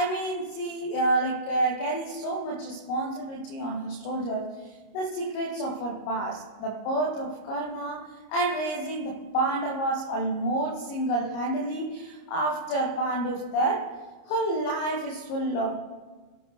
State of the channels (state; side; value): late; right; 29 ms